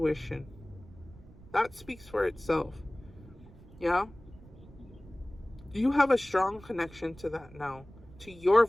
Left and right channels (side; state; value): right; noise; rumble, 21 dB below the sound